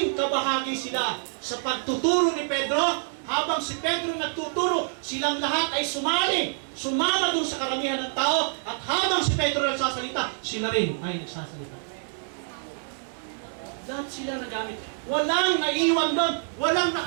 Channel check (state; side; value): silent; left; digital silence